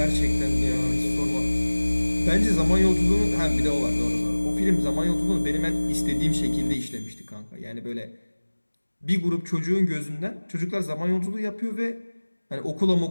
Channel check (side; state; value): both; inverted; correlation -1.00